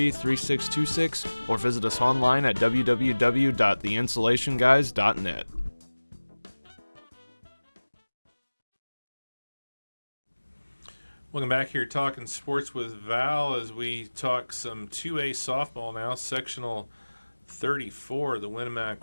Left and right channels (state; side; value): inverted; both; correlation -1.00